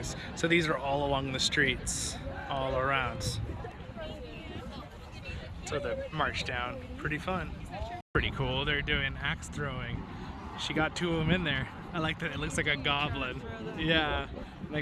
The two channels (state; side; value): identical; both; correlation 1.00